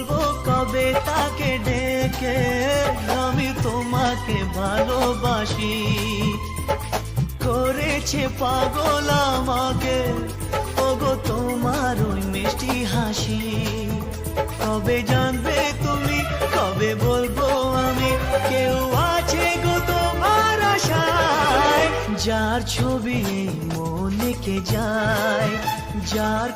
কবে তাকে ডেকে, আমি তোমাকে ভালোবাসি, করেছে পাগল আমাকে, ওগো তোমার ওই মিষ্টি হাসি। কবে জানবে তুমি, কবে বলবো আমি, কেউ আছে গো তোমার আশায়, যার ছবি এই মনে কে যায়, যার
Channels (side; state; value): both; identical; correlation 1.00